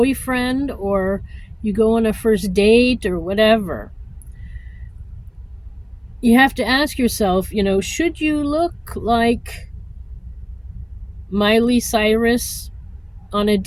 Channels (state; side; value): identical; both; correlation 1.00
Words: or you go on a first date or whatever, you have to ask yourself, should you look like Miley Cyrus on a